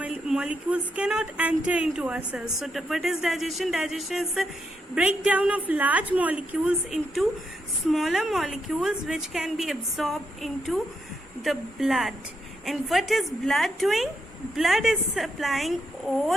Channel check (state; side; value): normal; both; correlation 0.81